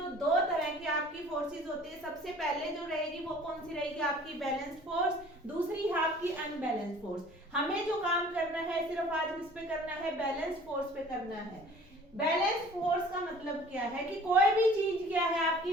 दो तरह की आपकी फोर्सेस होती है, सबसे पहले जो रहेगी वो कौन सी रहेगी, आपकी बैलेंस्ड फोर्स, दूसरी है आपकी अनबैलेंस्ड फोर्स। हमें जो काम करना है सिर्फ आज किस पे करना है, बैलेंस्ड फोर्स पे करना है। बैलेंस फोर्स का मतलब क्या है कि कोई भी चीज क्या है आपकी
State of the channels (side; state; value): both; normal; correlation 0.49